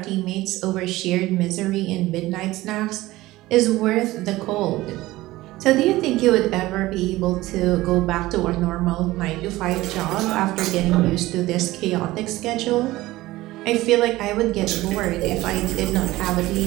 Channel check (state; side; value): quieter; left; 17.8 dB